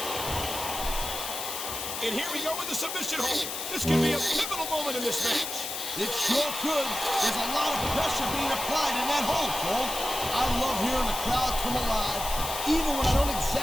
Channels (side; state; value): left; noise; hiss, 5 dB below the sound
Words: And here we go with the submission hold. This could be a pivotal moment in this match. It sure could. There's a lot of pressure being applied in that hold, Cole. I love hearing the crowd come alive, even when I don't